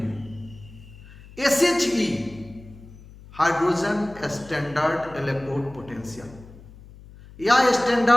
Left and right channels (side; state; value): left; noise; hum, 20 dB below the sound